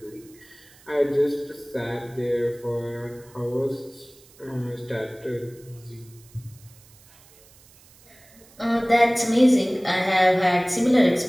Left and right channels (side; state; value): right; noise; hiss, 26 dB below the sound